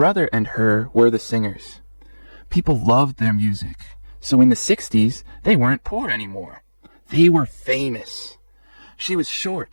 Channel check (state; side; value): inverted; both; correlation -1.00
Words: and her were the singers. People loved their music. So in the 60s, they weren't poor anymore. They were famous. She was